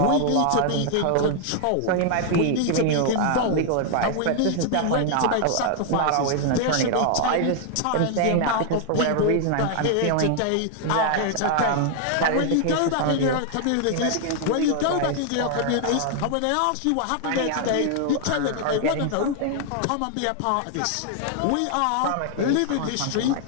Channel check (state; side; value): different; both; correlation 0.00